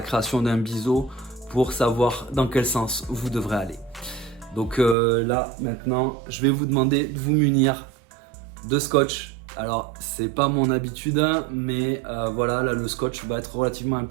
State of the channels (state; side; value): drops out; left; at 5.0 s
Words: création d'un biseau pour savoir dans quel sens vous devrez aller. Donc là, maintenant, je vais vous demander de vous munir de scotch. Alors, c'est pas mon habitude, mais voilà, là, le scotch va être relativement